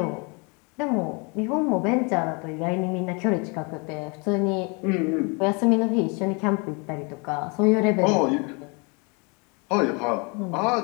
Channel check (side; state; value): right; quieter; 31.8 dB